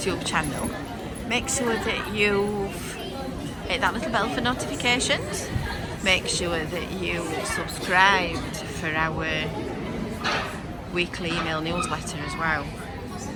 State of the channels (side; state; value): both; identical; correlation 1.00